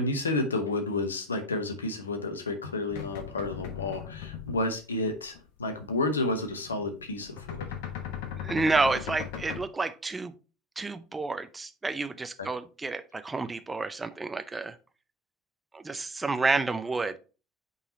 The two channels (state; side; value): normal; both; correlation 0.32